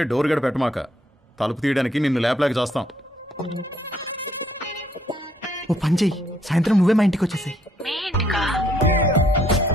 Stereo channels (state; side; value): normal; both; correlation 0.69